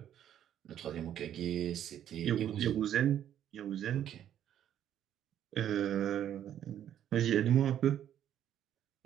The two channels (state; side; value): quieter; left; 10.5 dB